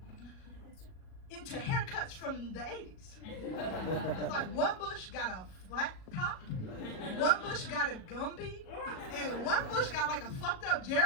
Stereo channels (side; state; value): right; late; 37 ms